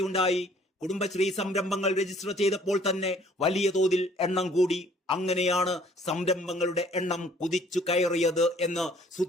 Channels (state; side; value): normal; both; correlation 0.59